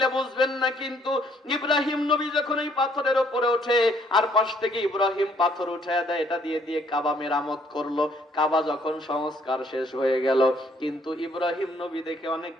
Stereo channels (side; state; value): both; normal; correlation 0.65